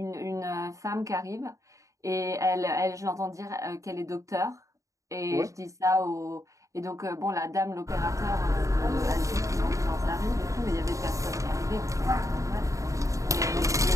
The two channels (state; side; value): late; left; 0.16 ms